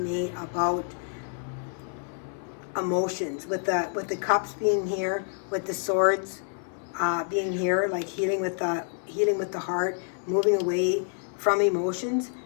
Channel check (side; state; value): right; silent; 56 dB below the other